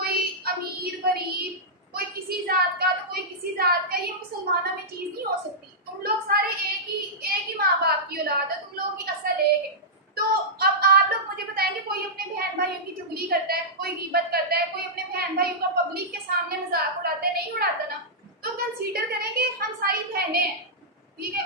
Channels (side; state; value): both; normal; correlation -0.12